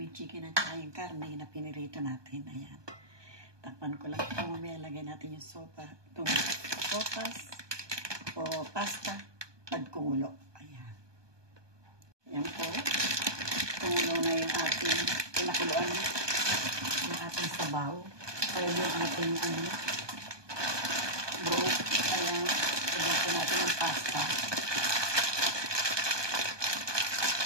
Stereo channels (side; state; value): left; late; 1.2 ms